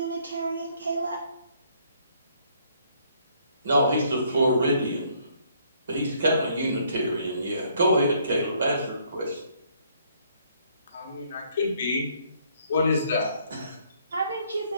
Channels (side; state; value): both; inverted; correlation -0.66